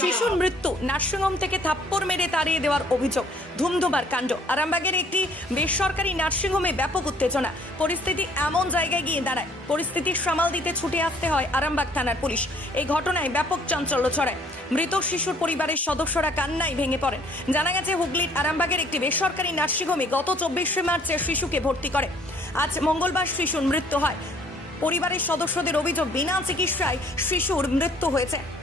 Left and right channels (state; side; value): normal; both; correlation 0.59